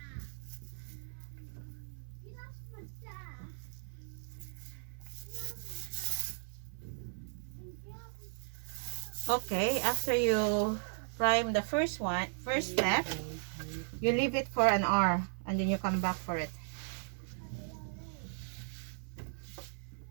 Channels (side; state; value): left; silent; 53 dB below the other